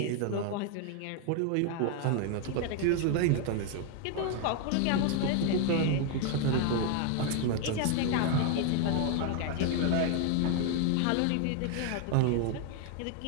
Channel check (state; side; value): different; both; correlation 0.01